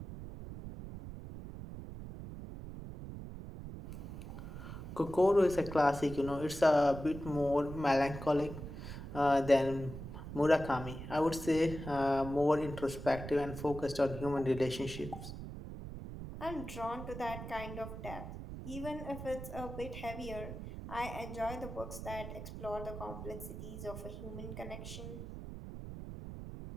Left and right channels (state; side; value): noise; right; rumble, 9 dB below the sound